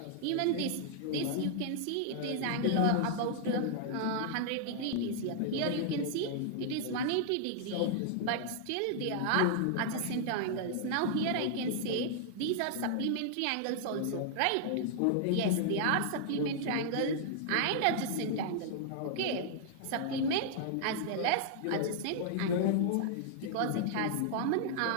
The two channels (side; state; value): both; different; correlation -0.01